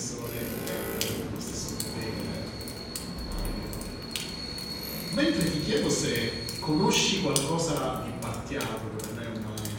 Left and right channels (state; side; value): identical; both; correlation 1.00